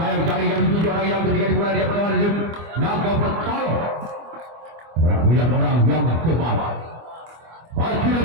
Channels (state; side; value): late; left; 25 ms